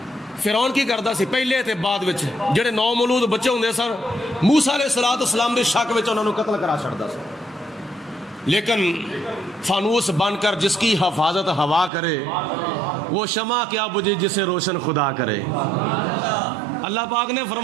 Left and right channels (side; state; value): left; drops out; at 11.9 s